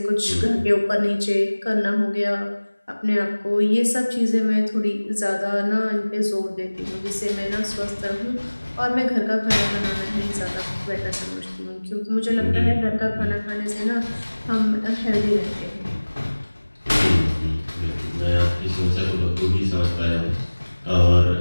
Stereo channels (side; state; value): both; inverted; correlation -1.00